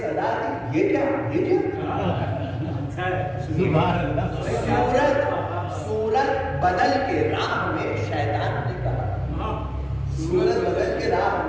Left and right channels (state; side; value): identical; both; correlation 1.00